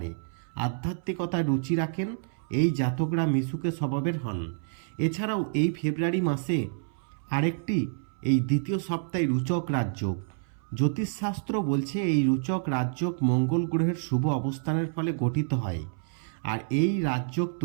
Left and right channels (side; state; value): left; silent; 59 dB below the other